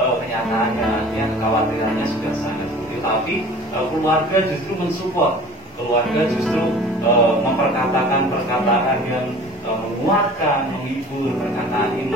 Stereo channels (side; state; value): both; normal; correlation 0.44